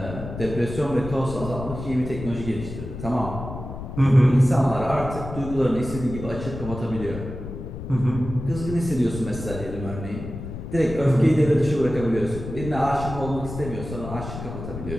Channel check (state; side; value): noise; left; rumble, 9 dB below the sound